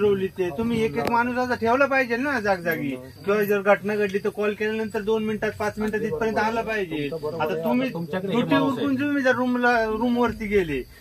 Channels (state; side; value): identical; both; correlation 1.00